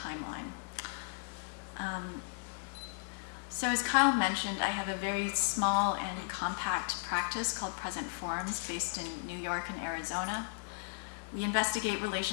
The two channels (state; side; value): silent; right; 54 dB below the other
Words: So as Kyle mentioned, I have a very small and compact practice called Present Forms based in New York and Arizona. We investigate